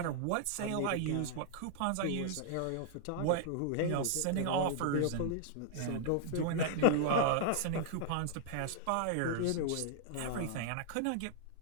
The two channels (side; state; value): both; different; correlation -0.01